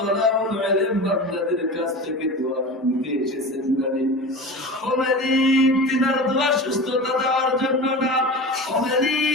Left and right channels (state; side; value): normal; both; correlation 0.31